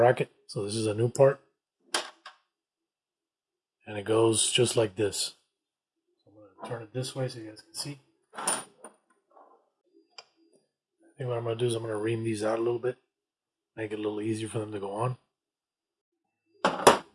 So this is a new part. And it goes just like this. So I'm going to turn it this way so you guys can see. I think what I'm going to do is I'm going to ream these out a little bit. Make it a little easier for them to go on.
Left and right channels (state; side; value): identical; both; correlation 1.00